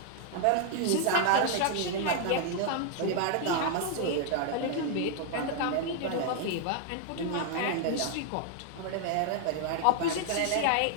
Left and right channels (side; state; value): both; different; correlation 0.00